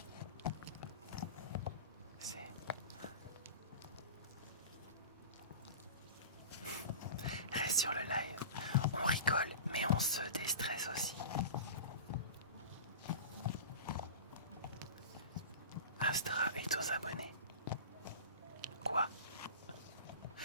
Reste sur le live. pense, déstresse aussi. Astra est aux abonnés. Quoi?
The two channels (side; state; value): both; inverted; correlation -0.32